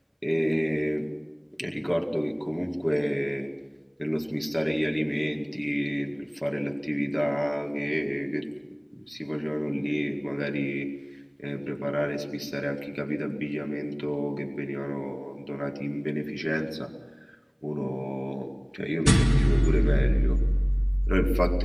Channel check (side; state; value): both; identical; correlation 1.00